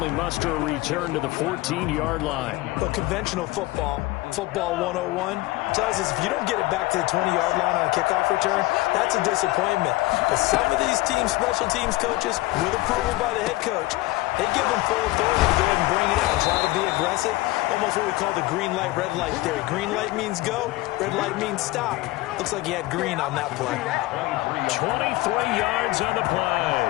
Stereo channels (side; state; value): right; quieter; 19.9 dB